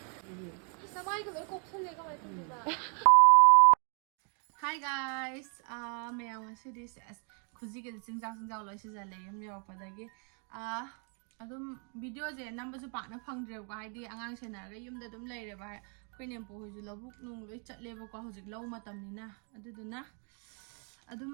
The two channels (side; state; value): left; quieter; 39.8 dB